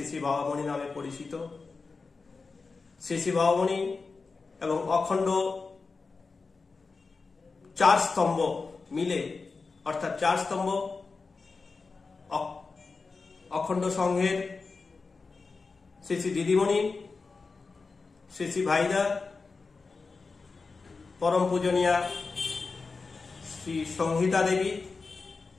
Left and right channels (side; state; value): right; quieter; 4.3 dB